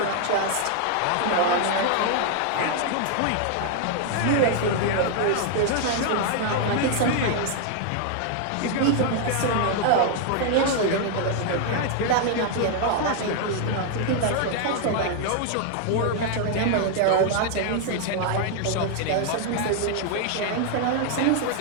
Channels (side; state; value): both; different; correlation 0.00